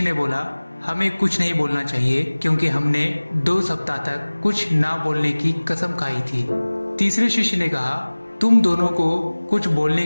ने बोला, हमें कुछ नहीं बोलना चाहिए क्योंकि हमने 2 सप्ताह तक कुछ ना बोलने की कसम खाई थी। तीसरे शिष्य ने कहा, तुम दोनों को कुछ बोलने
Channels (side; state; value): both; inverted; correlation -1.00